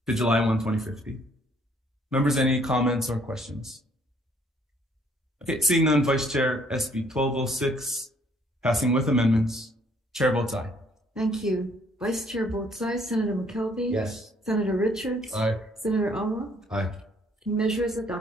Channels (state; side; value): normal; both; correlation 0.64